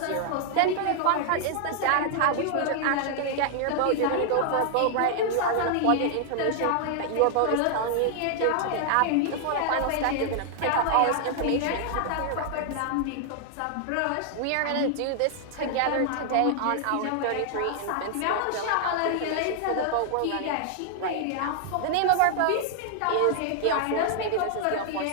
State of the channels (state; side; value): different; both; correlation 0.00